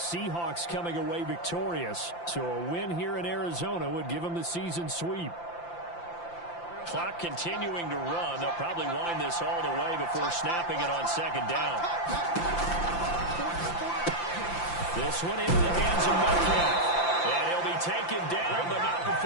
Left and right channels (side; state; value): right; late; 5.8 ms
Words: coming away victorious. So a win here in Arizona would give them the season sweep. Clock continuing to run. They'll probably wind this all the way before snapping it on second down. This one into the hands of Metcalf. And he'll be taken down, but not